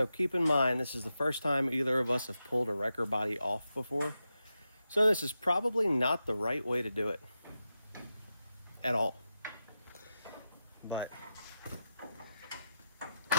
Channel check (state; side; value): inverted; both; correlation -0.90